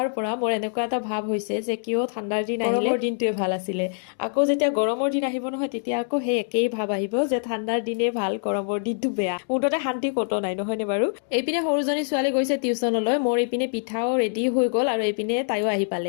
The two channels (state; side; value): silent; right; digital silence